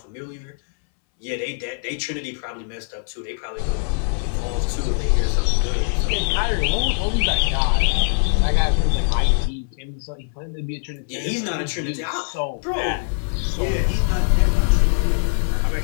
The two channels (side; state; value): right; silent; 64 dB below the other